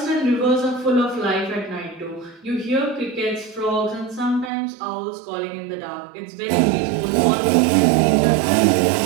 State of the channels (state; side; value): drops out; left; at 4.5 s